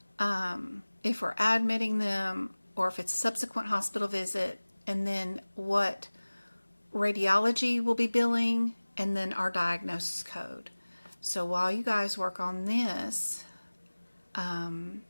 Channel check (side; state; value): both; inverted; correlation -1.00